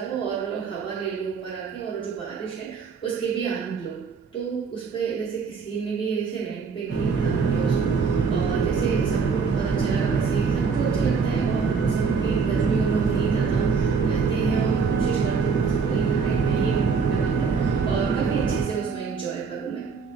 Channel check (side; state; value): left; quieter; 5.4 dB